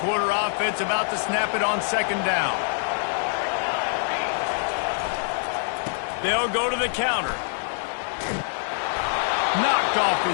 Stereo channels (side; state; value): right; silent; digital silence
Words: offense, about to snap it on second down. They'll go to the counter. Knocked off